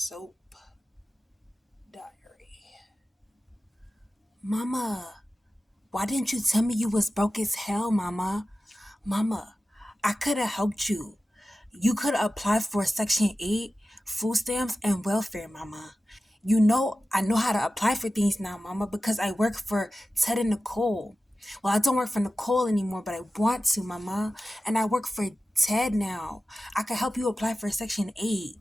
Diary. Mama, why didn't you tell me you was broke as hell, Mama? Mama, I could have helped you. You could have applied for Section 8, food stamps, and welfare, Mama. I know how to apply for things now, Mama, because I work for Ted and Nicole. Well, I don't work for Nicole anymore, but I want to, Mama. And I work for Ted now. I could help you apply for Section 8,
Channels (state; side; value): normal; both; correlation 0.94